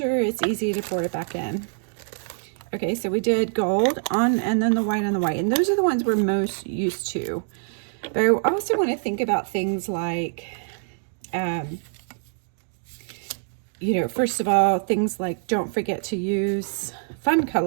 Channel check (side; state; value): left; silent; digital silence